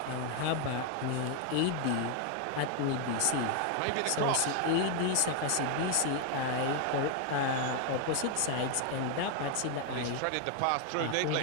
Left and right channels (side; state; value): both; different; correlation 0.00